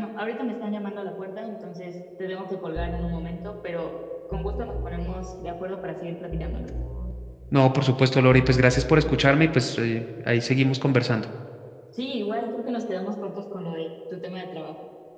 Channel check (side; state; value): both; identical; correlation 1.00